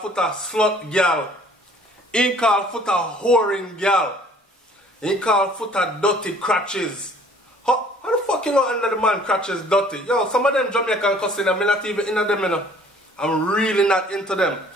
slut girl. He called footer whoring girl. He called footer dirty crutches. How the fuck you know under the man crutches dirty? Yo, some of them Jamaican cussing, I'm not even into them, you know. I'm really not into them.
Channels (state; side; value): normal; both; correlation 0.55